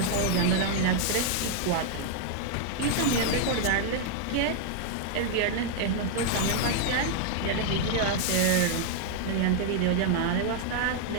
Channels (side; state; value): both; different; correlation 0.00